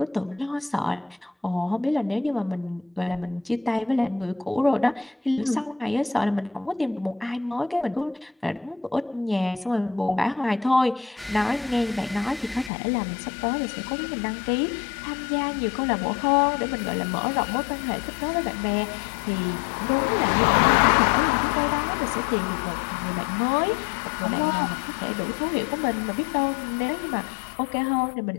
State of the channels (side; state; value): right; drops out; at 12.7 s